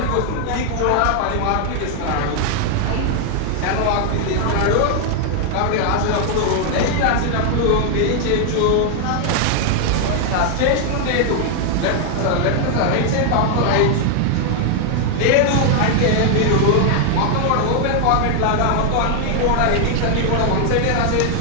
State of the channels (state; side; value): different; both; correlation 0.00